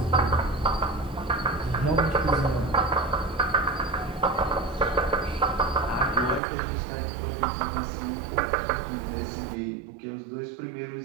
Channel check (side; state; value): left; drops out; at 6.4 s